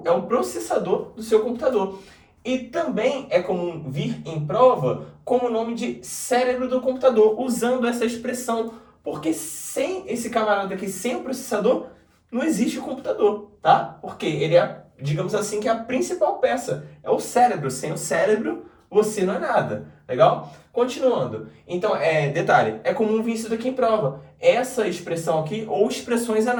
é o processador do seu computador. E também é comum vir em prova como o nome de cérebro do computador, usando essa expressão, porque sem esse camarada aqui, sem o processador, não existe o computador, tá? Porque ele é, digamos assim, que é a principal peça, é o cérebro. Sem o cérebro, você não é nada, legal? Continuando, então, detalhe, é comum vir isso daqui em prova, essa expressão aqui, ou expressões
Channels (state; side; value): identical; both; correlation 1.00